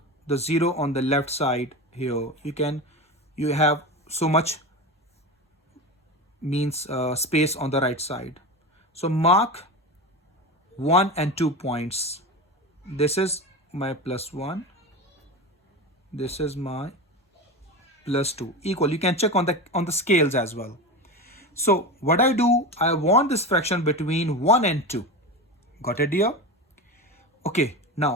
the 0 on the left side here. You have so much means space on the right side. So mark 1 and 2 points. This is my +1. This is my +2. Equal. You can check on the scales as well. So what I do, I want this fraction between 1 and 2. Got it here? Okay.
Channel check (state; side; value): normal; both; correlation 0.24